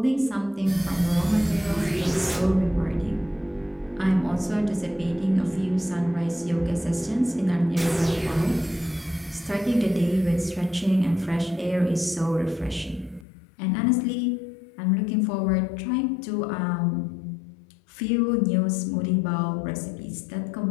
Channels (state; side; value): drops out; right; at 13.2 s